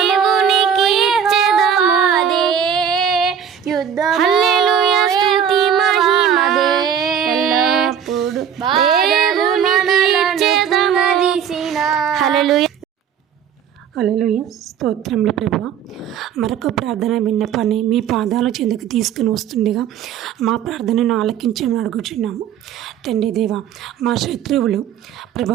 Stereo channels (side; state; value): left; quieter; 8.4 dB